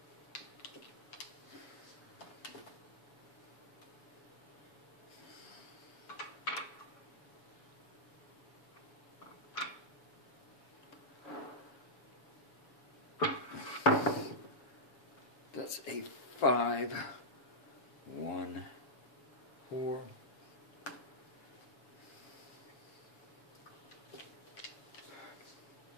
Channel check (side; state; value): right; late; 7.1 ms